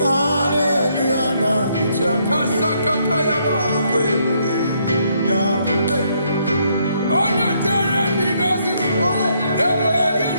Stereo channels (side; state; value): both; inverted; correlation -0.72